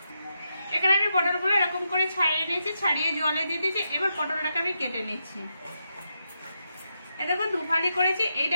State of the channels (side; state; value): both; inverted; correlation -0.84